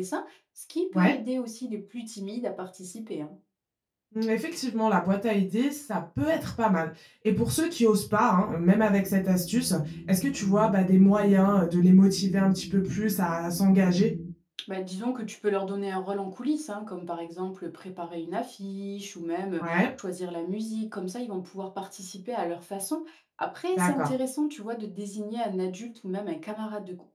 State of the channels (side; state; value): both; identical; correlation 1.00